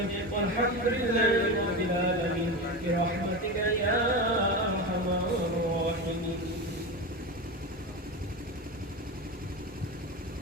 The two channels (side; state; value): both; normal; correlation 0.21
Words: والحمد لله رب العالمين برحمتك يا